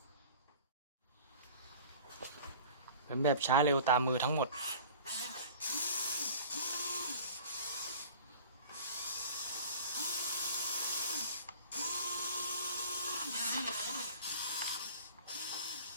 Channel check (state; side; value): inverted; both; correlation -0.43